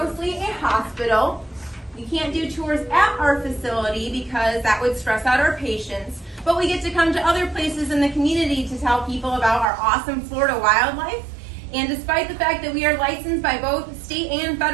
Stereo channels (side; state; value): left; drops out; at 9.7 s